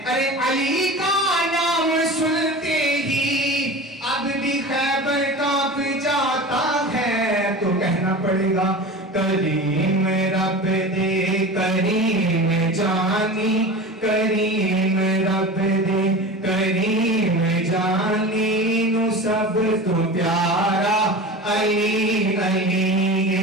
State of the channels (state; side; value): normal; both; correlation 0.32